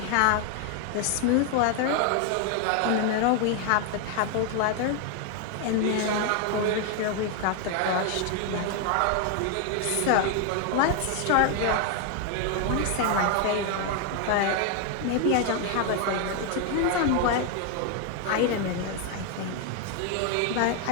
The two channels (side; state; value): both; different; correlation 0.00